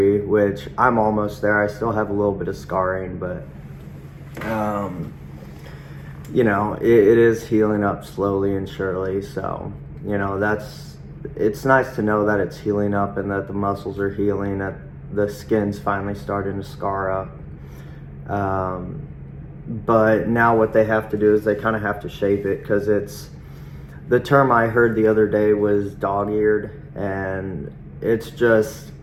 which I'm almost there. I still have a little bit of scarring, but, it is healing up slowly and surely. So, it's nice to know that it's healing up and that the muscles are healing, that the skin's finally starting to scar up. But now what they have to do is they kind of have to shape it, because the term I heard the other day was dog-eared, and it's just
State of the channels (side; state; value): both; identical; correlation 1.00